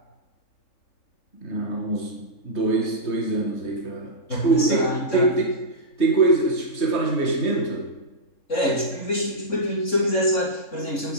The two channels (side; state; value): right; late; 3.6 ms